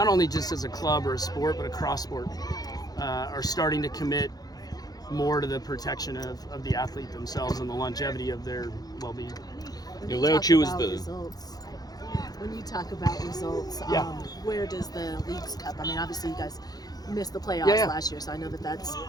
only just as a club or a sport, but across sport, are starting to commit more to the protection of the athlete themselves and the longevity of their well-being. Leo Chu is the results. When you talk about results, where does the Leagues Cup? I mean, obviously you guys missed the playoffs last year, so I know that's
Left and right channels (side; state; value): right; late; 0.19 ms